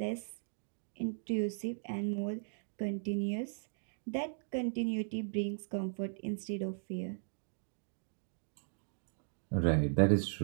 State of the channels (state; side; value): silent; left; digital silence